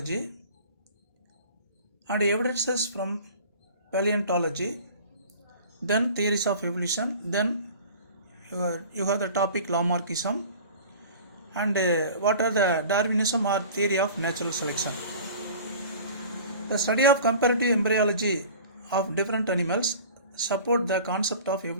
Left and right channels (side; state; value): both; inverted; correlation -0.42